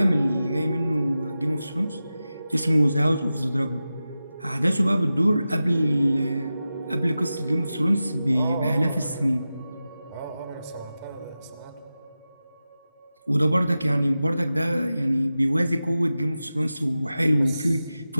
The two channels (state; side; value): inverted; both; correlation -0.93